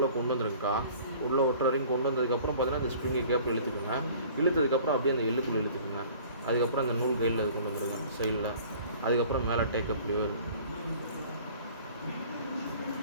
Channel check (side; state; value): both; inverted; correlation -0.49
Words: கொண்டு வந்துருங்கக்கா. உள்ளே ஒட்டுற வரைக்கும் கொண்டு வந்ததுக்கப்புறம் பார்த்தீங்கன்னா இந்த ஸ்ப்ரிங்கை கேப்பில் இழுத்துக்குங்க. இழுத்ததுக்கப்புறம் அப்படியே அந்த எள்ளுக்குள்ளே இழுத்துக்குங்க. அதுக்கப்புறம் அந்த நூல் கையில் அது கொண்டு வந்துருங்க சைடில். அதுக்கப்புறம் மேலே டேக்கப் லிவர்.